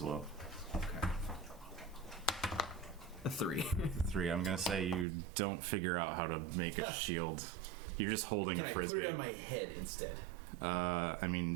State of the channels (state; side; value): drops out; left; at 5.1 s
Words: well. Okay. A 3. 3. I'm gonna say you don't figure out how to make a shield. You're just holding Can a I frisbee. put it on my head instead? I